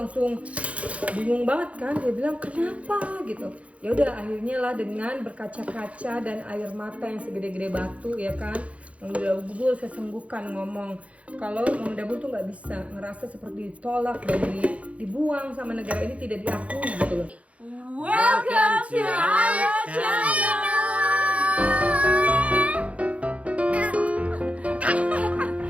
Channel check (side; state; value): left; late; 0.064 ms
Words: bingung banget kan. Dia bilang kenapa gitu. Ya udah akhirnya lah dengan berkaca-kaca dan air mata yang segede-gede batu ya kan. Mami Dabul sesenggukan ngomong kalau Mami Dabul tuh nggak bisa, ngerasa seperti ditolak dan dibuang sama negara ini, tidak diakui gitu loh. Welcome to our channel.